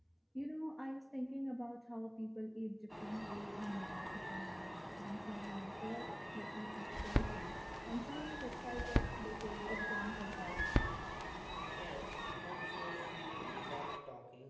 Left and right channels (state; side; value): identical; both; correlation 1.00